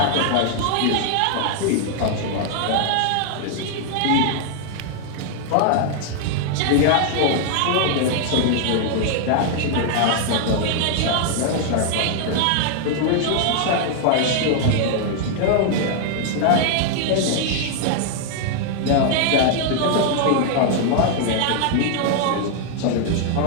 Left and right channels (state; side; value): different; both; correlation 0.00